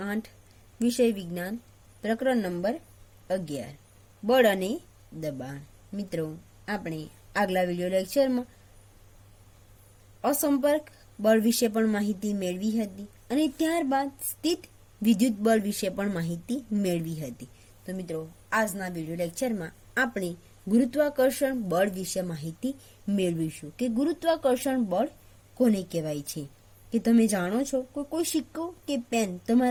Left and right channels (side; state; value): both; identical; correlation 1.00